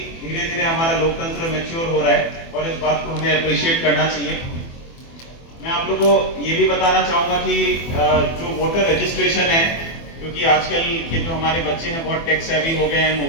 धीरे धीरे हमारा लोकतंत्र मैच्योर हो रहा है और इस बात को हमें अप्रिशिएट करना चाहिए। मैं आप लोगों को ये भी बताना चाहूंगा कि जो वोटर रजिस्ट्रेशन है, क्योंकि आजकल के जो हमारे बच्चे हैं बहुत टेक सेवी हो गए हैं,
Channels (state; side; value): late; right; 24 ms